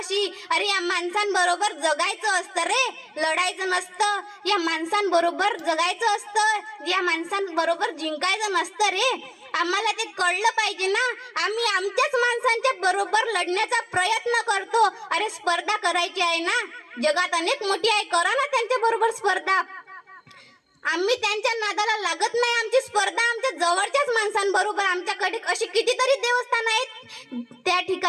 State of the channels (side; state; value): both; identical; correlation 1.00